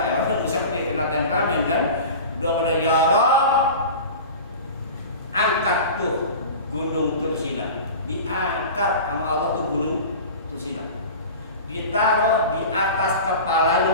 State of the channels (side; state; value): both; inverted; correlation -0.34